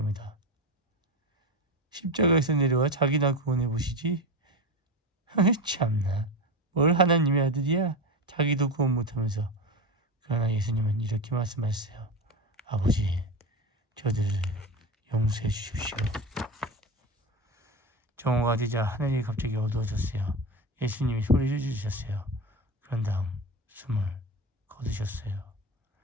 십자가에서 내려와 자기나 구원해 보시지. 참나, 뭘 하나님의 아들이야? 자기도 구원 못하면서. 그러나 예수님은 이렇게 말씀하셨어요. 아버지, 저들을 용서해 주십시오. 정오가 되자 하늘이 갑자기 어두워졌어요. 예수님이 소리를 지르셨어요. 그런 다음 숨을 거두셨어요.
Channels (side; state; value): both; normal; correlation 0.23